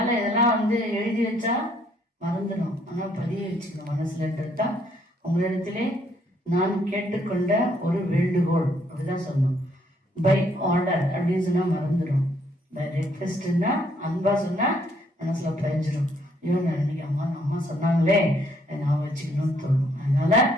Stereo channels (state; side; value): normal; both; correlation 0.68